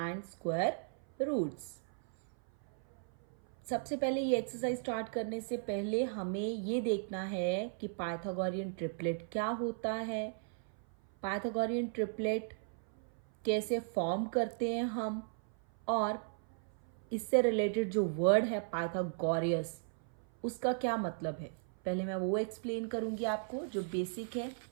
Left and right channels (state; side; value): silent; left; 54 dB below the other